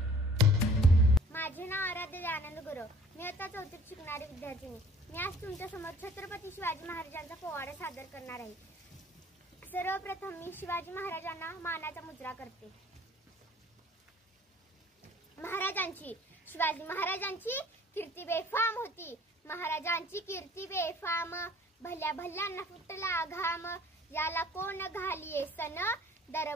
माझे नाव आराध्य आनंद गुरव। मी आता चौथीत शिकणारी विद्यार्थिनी। मी आज तुमच्या समोर छत्रपती शिवाजी महाराजांचा पोवाडा सादर करणार आहे। सर्वप्रथम मी शिवाजी महाराजांना मानाचा मुजरा करते। शिवाजी महाराजांची कीर्ती बेफाम होती। महाराजांची कीर्ती बेफाम, भल्या भल्यांना फुटला घाम। याला कोण घालिये सन,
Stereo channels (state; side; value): normal; both; correlation 0.52